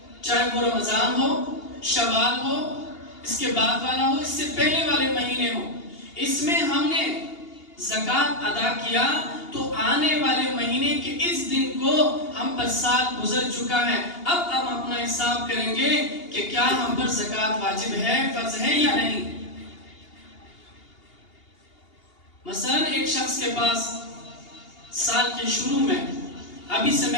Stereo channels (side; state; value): right; late; 2.8 ms